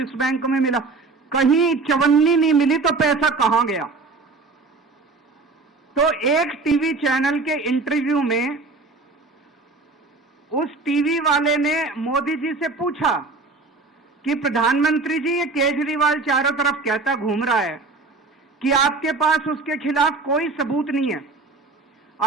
बैंक में मिला, कहीं चवन्नी नहीं मिली, तो पैसा कहां गया? तो एक टीवी चैनल के इंटरव्यू में उस टीवी वाले ने मोदी जी से पूछा कि प्रधानमंत्री जी, ये केजरीवाल चारों तरफ कहता घूम रहा है कि आपके पास उसके खिलाफ कोई सबूत नहीं है,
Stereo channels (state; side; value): quieter; left; 3.8 dB